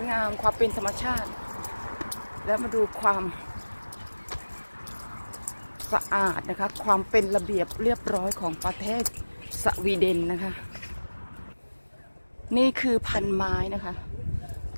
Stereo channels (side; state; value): both; inverted; correlation -1.00